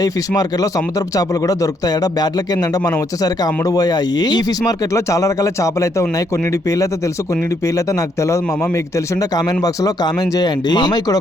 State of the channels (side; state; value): both; normal; correlation 0.73